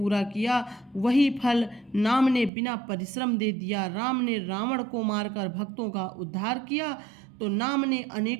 किया, वही फल नाम ने बिना परिश्रम दे दिया। राम ने रावण को मारकर भक्तों का उद्धार किया तो नाम ने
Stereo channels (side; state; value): left; drops out; at 2.5 s